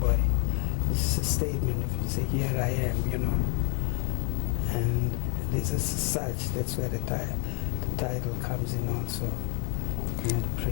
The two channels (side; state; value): right; quieter; 37.8 dB